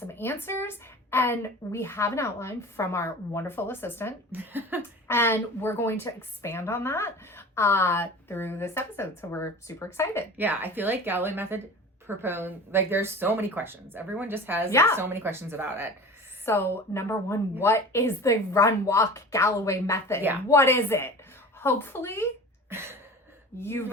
answers, and we have an outline from our wonderful assistant, and we're going to expand on that through this episode. So we're super excited. Yeah, I feel like Galloway method there's so many questions. Everyone just has so many questions about it. So number one, what is the run walk Galloway method? Yeah. What is it? Hopefully you've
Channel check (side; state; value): both; normal; correlation 0.37